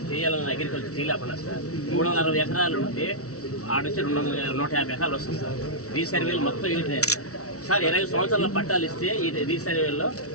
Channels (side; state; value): right; late; 0.65 ms